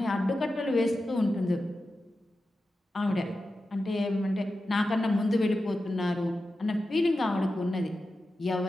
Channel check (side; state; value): both; normal; correlation 0.92